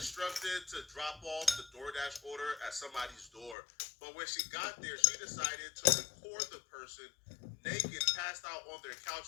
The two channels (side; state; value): right; drops out; at 3.6 s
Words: to drop off the Doordash order at somebody's door, but when she got there, she decided to record the person naked, passed out on their